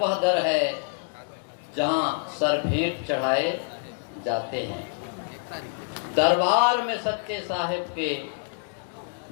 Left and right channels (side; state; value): right; silent; digital silence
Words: दर है जहाँ सर भेंट चढ़ाए जाते हैं। दरबार में सच्चे साहिब के